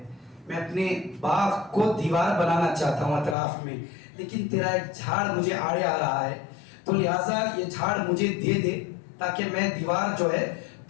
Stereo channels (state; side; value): drops out; right; at 3.4 s